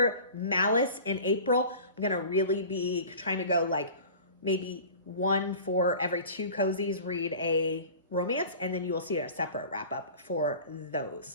Malice in April, I'm going to really be trying to go like maybe one for every two cozies, read a romance, and then you will see a separate wrap-up for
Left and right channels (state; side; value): inverted; both; correlation -0.41